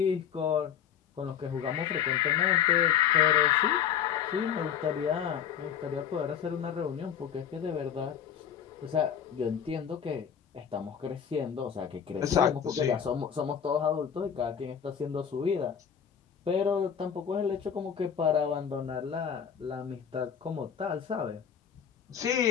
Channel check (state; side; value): quieter; right; 8.4 dB